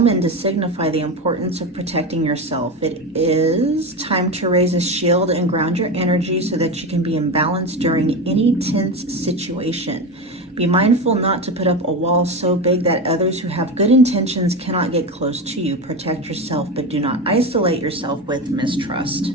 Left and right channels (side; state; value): both; normal; correlation 0.19